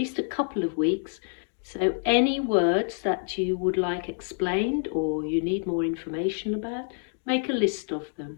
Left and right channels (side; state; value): right; silent; digital silence